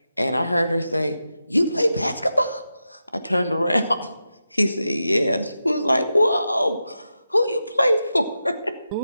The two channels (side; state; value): both; inverted; correlation -0.90